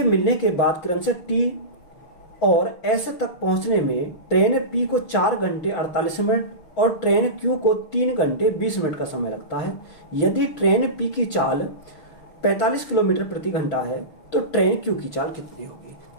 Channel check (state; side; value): late; right; 6.5 ms